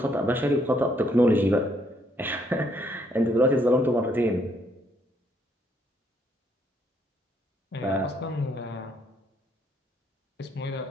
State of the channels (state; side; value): normal; both; correlation 0.70